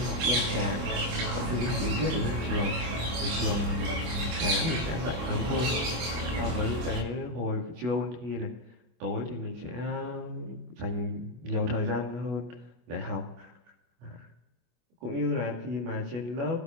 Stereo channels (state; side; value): late; left; 25 ms